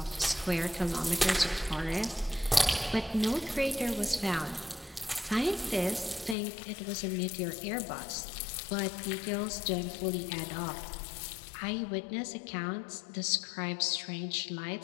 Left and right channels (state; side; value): drops out; right; at 6.4 s